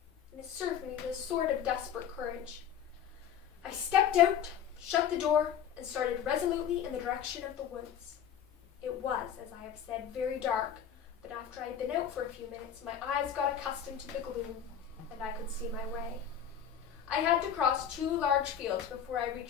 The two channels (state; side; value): quieter; right; 8.8 dB